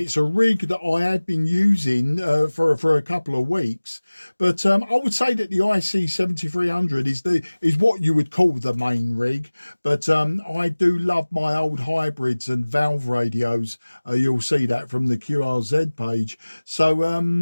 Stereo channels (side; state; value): both; inverted; correlation -1.00